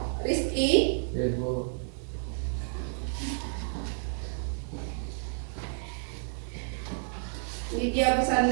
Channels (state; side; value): silent; left; digital silence